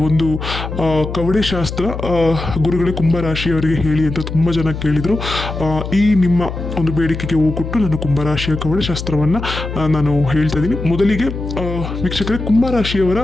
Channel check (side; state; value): left; noise; hum, 7 dB below the sound